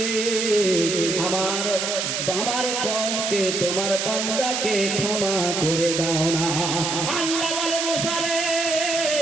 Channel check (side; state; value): right; noise; hiss, 1 dB below the sound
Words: আমার আমার কমকে তোমার বান্দাকে ক্ষমা করে দাও না। আল্লাহ বলে, মুসা রে